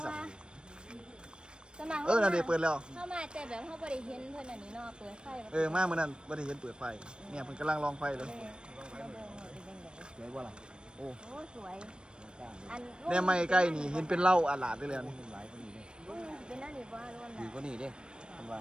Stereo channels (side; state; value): left; late; 0.053 ms